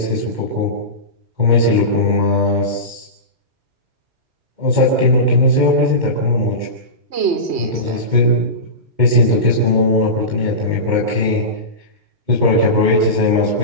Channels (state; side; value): late; left; 2.1 ms